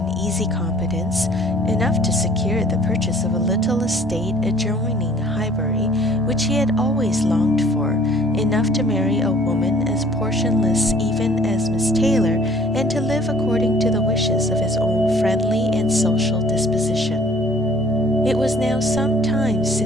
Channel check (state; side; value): normal; both; correlation 0.54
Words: easy competence enough to secure the purchase of a little estate adjoining Highbury, which he had always longed for, enough to marry a woman as portionless even as Miss Taylor, and to live according to the wishes of his own friendly and social disposition. It was now some time